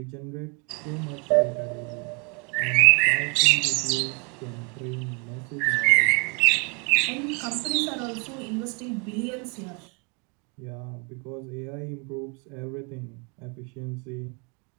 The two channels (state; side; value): quieter; left; 33.9 dB